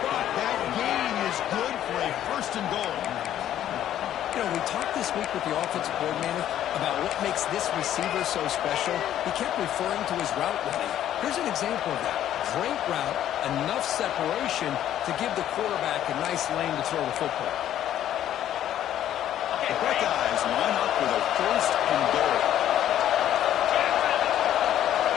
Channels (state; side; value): quieter; right; 11.5 dB